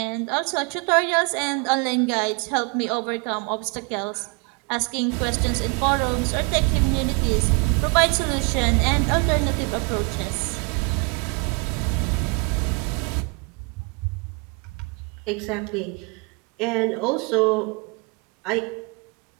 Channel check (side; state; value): left; quieter; 32.7 dB